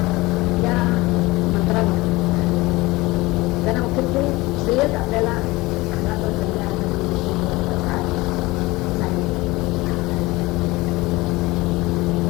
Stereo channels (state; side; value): quieter; right; 21.2 dB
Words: या मंत्रामध्ये त्यांना मुख्यत्वे श्रेयच आपल्याला